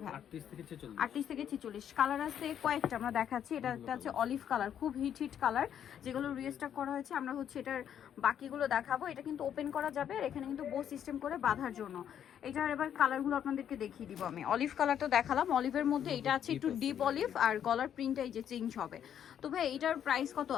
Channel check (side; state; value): right; quieter; 9.4 dB